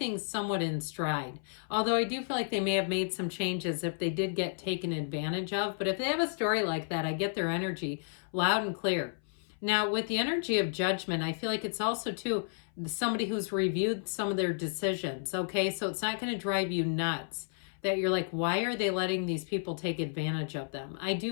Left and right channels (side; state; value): right; silent; 56 dB below the other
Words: somewhat in stride. Although I do feel like they may have made some changes if they did get taken advantage of. But if they have a story like that, I get their energy loud and clear. Now, with the energy of judgment, I feel like it's also too somebody who's reviewed some of their decisions. Okay, so it's not going to drive you nuts that you're like, why are they letting these people take advantage of them? I